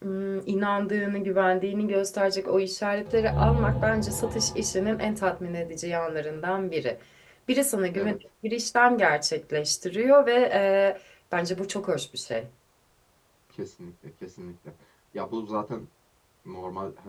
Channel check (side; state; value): both; identical; correlation 1.00